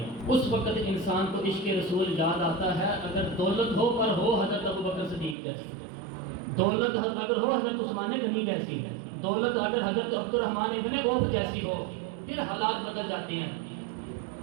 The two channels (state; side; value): drops out; left; at 5.4 s